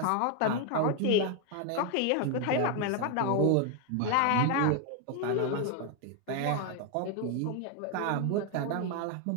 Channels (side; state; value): both; different; correlation 0.01